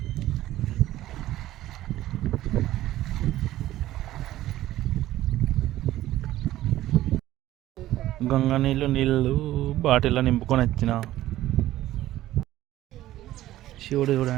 గంగ నీళ్ళు బాటిల్లో నింపుకొని వచ్చిన. శివుడు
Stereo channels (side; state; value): left; quieter; 14.6 dB